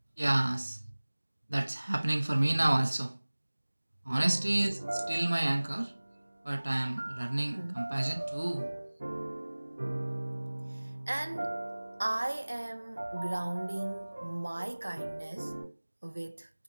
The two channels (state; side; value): inverted; both; correlation -1.00